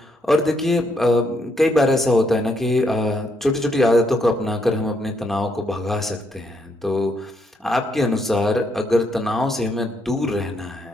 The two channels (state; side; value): normal; both; correlation 0.75